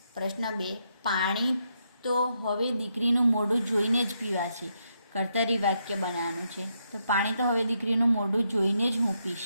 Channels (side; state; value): both; inverted; correlation -0.80